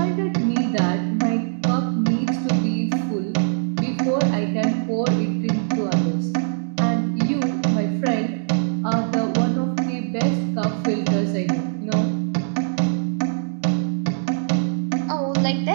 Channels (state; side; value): silent; left; digital silence